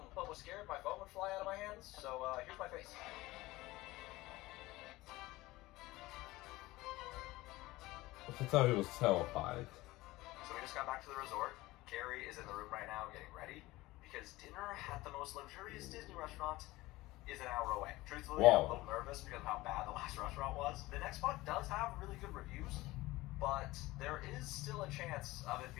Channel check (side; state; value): right; quieter; 19.1 dB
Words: but was scared my phone would fly out of my hands, so here's my face. I could tell he was terrified. So we just got back to the resort. Carrie is in the room right now getting ready because dinner at the most luxurious Disney restaurant is an hour away. Truthfully, Wow. I'm a little nervous because of how bad the last restaurant was. The next spot does have really good reviews, but there is still a chance of it